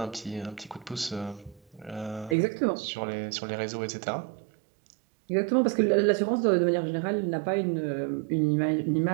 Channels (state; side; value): drops out; left; at 2.4 s